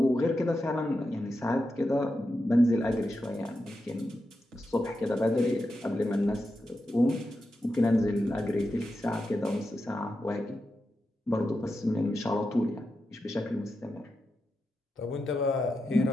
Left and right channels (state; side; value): normal; both; correlation 0.88